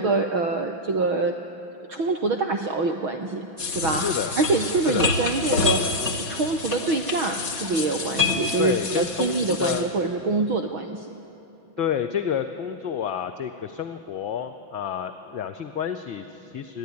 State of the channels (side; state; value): left; late; 5.4 ms